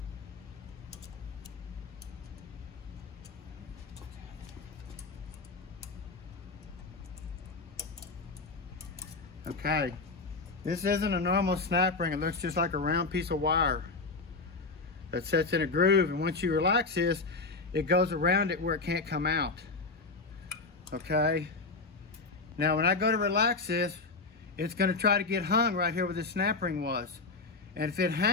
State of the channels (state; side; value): quieter; right; 3.9 dB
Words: Okay, this isn't a normal snap ring. It looks just like a round piece of wire that sets in a groove, and once you relax this, it goes around it where it can't come out. Okay, now when I go to relax this, it's going to try to get hung right here where the snap ring was, and if it